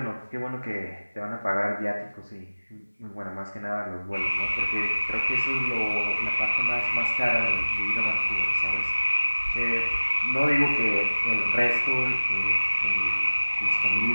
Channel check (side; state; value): both; inverted; correlation -1.00